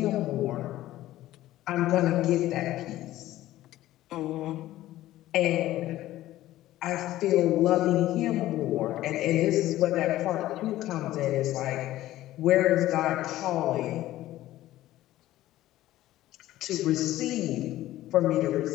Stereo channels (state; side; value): quieter; right; 15.0 dB